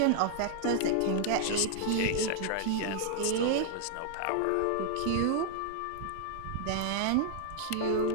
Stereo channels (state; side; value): different; both; correlation 0.00